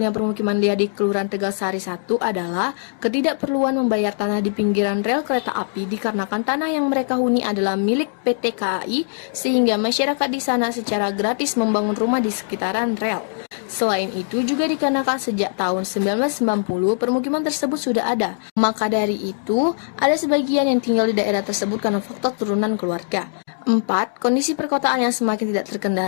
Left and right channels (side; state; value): right; silent; digital silence